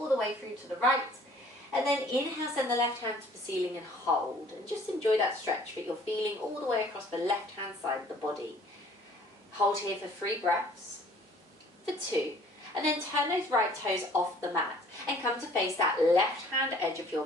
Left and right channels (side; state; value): both; normal; correlation 0.55